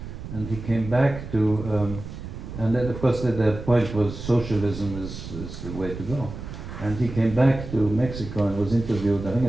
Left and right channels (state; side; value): noise; right; rumble, 10 dB below the sound